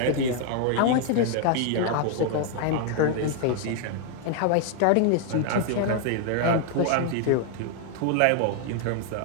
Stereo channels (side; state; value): both; different; correlation 0.00